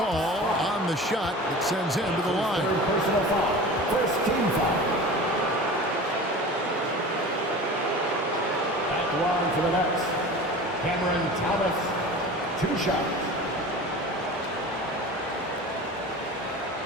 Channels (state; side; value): normal; both; correlation 0.36